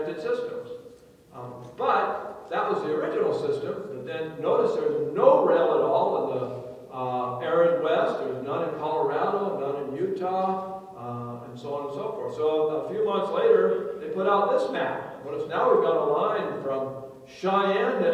systems. But that was the original system. But then notice there's no rail at all in the arid West. There's none in Colorado, none in Utah, and so on and so forth. So a few months later, they put out this map. Notice now we've got a line from Cheyenne to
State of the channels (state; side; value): identical; both; correlation 1.00